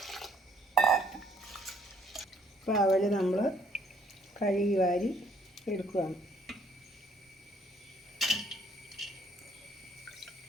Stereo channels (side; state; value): both; normal; correlation 0.63